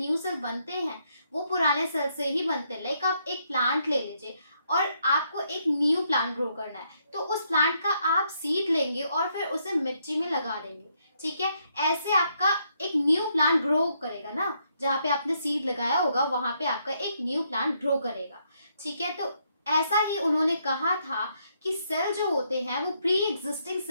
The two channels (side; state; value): both; inverted; correlation -0.75